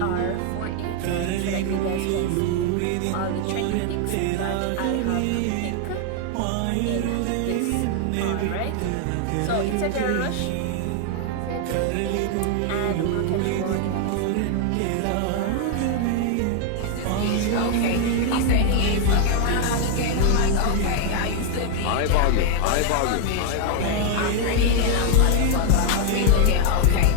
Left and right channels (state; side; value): different; both; correlation 0.00